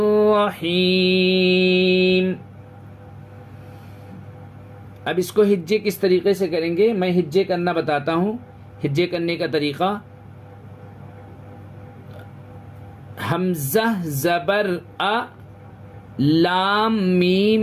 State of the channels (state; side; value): identical; both; correlation 1.00